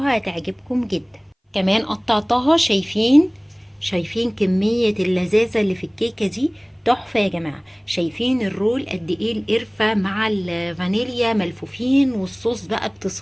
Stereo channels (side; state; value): both; identical; correlation 1.00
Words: هتعجبكم جدا. كمان قطعتها. شايفين كميه اللذاذه اللي في الكيكه دي؟ تحفة يا جماعة. شايفين الرول قد ايه؟ القرفة مع الفانيليا ملفوفين والصوص بقى